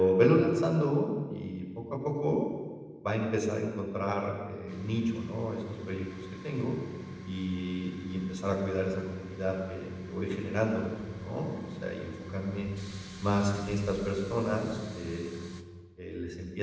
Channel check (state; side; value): identical; both; correlation 1.00